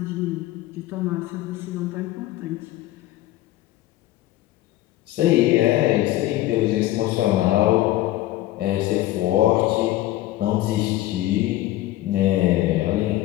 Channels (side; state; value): right; quieter; 15.7 dB